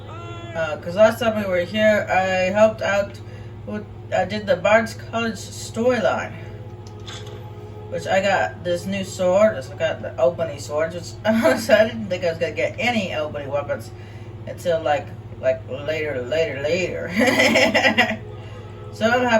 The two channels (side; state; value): both; identical; correlation 1.00